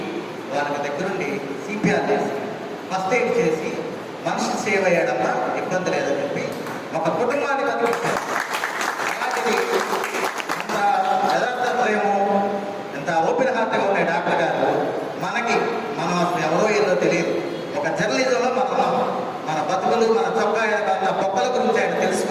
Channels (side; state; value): both; identical; correlation 1.00